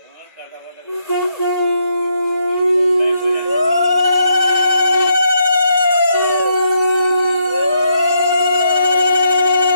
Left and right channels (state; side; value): inverted; both; correlation -0.77